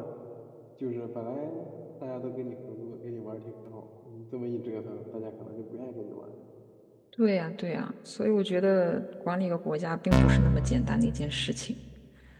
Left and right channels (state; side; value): identical; both; correlation 1.00